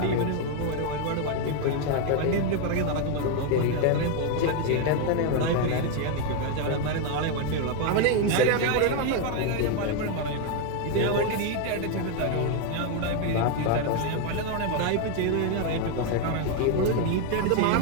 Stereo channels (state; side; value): different; both; correlation 0.01